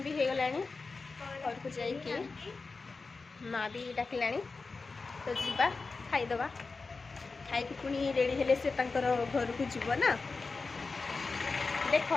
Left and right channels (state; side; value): quieter; right; 4.1 dB